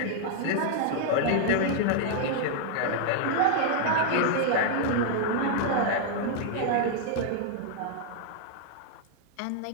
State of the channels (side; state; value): both; different; correlation -0.01